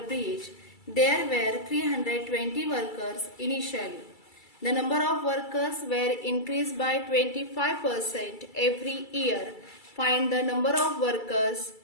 bridge, there were 320 workers initially. The number of workers were increased by 25% every year. Find the number of workers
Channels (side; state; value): right; late; 2.3 ms